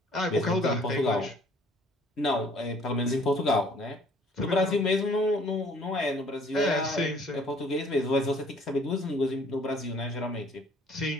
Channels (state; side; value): normal; both; correlation 0.57